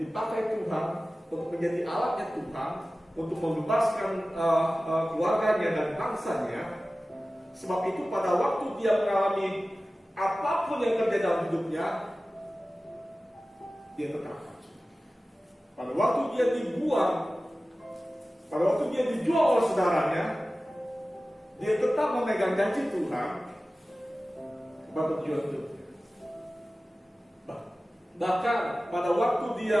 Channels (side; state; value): both; normal; correlation 0.96